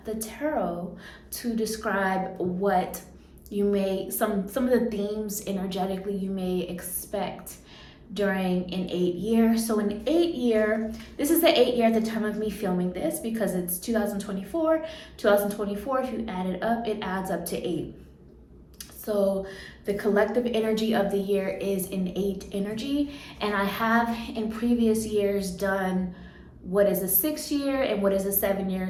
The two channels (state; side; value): identical; both; correlation 1.00